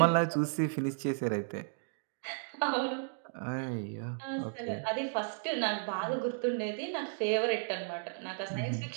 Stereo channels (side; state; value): left; silent; digital silence